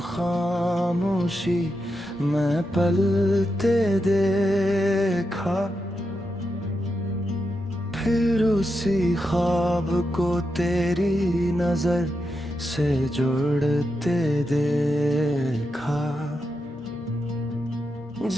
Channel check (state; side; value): normal; both; correlation 0.86